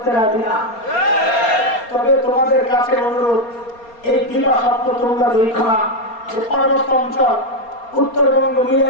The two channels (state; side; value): late; right; 4.3 ms